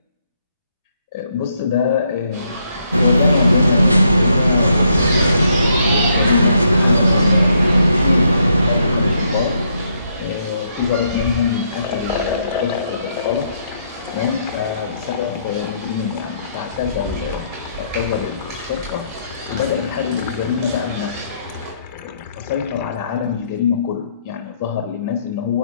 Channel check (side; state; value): both; inverted; correlation -0.73